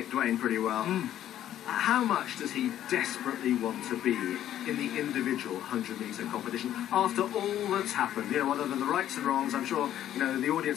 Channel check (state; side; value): quieter; right; 11.7 dB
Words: pretty well. How much does he desperately want to be in the individual 100-metre competition after all that's happened? You know, other than the rights and wrongs, I'm sure, you know, the